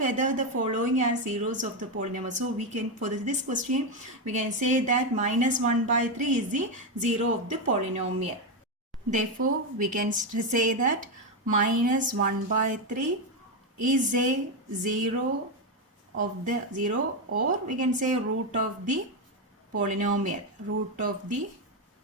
the following are zeros of the polynomial. So we can, for this question, we can say that minus 1 by 3 is the 0 of the polynomial. Therefore, we can say that minus 1 by 3 is a 0 of the 0, or we can say root of the polynomial, root of the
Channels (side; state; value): both; normal; correlation 0.08